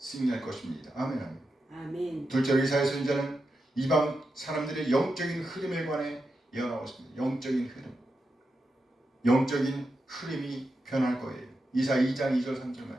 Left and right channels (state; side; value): normal; both; correlation 0.88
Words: 것입니다. 아멘, 아멘. 아멘. 둘째로 이사야 선지자는 이방 사람들의 영적인 흐름에 관해 예언하고 있습니다. 영적인 흐름이 변할 거예요. 이사야 2장 2절 3절